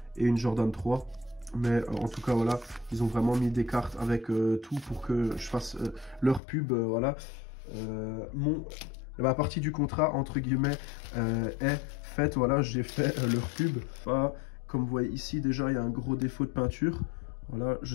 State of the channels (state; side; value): drops out; right; at 6.4 s